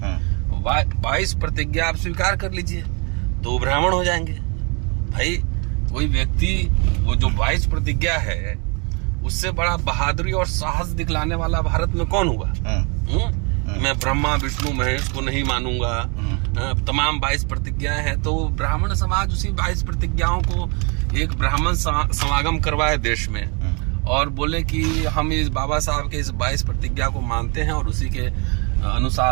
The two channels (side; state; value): left; quieter; 32.8 dB